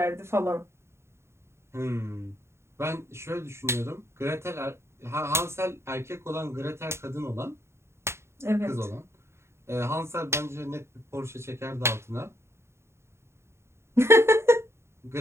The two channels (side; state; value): left; late; 0.13 ms